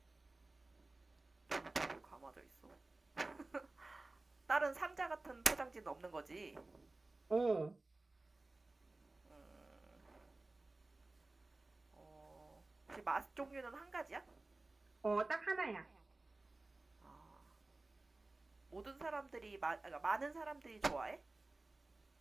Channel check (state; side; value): quieter; left; 3.1 dB